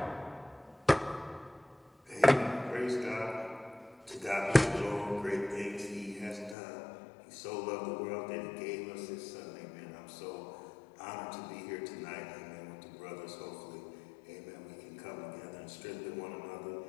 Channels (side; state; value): right; drops out; at 6.6 s